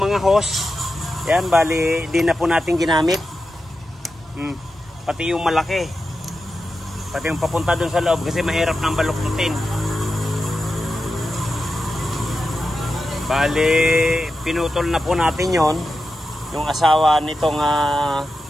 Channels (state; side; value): normal; both; correlation 0.90